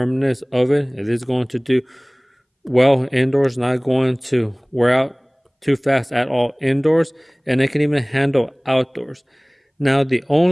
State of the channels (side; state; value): both; identical; correlation 1.00